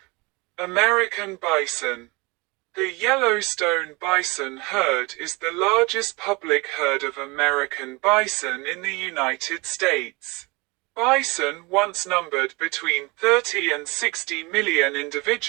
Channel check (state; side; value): quieter; left; 26.0 dB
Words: American bison. The Yellowstone bison herd is the largest public herd of American bison in the United States. Bison once numbered between 30 and 60 million